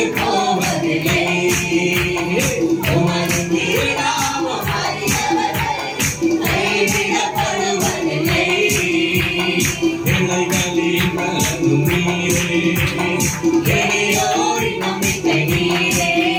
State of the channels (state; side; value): identical; both; correlation 1.00